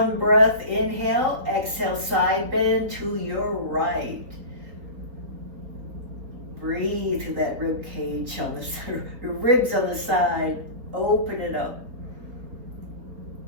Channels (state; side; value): late; left; 3.9 ms